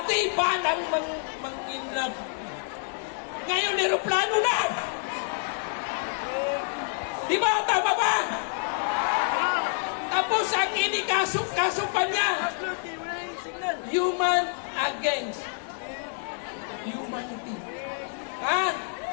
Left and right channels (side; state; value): right; silent; 58 dB below the other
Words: ba nang mangidnap? Ngayon, aeroplano na! Di ba? Tama ba? Tapos ang inikaso pa niya, human against humanity. Ha?